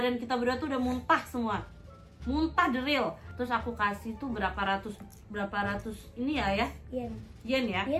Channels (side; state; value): both; identical; correlation 1.00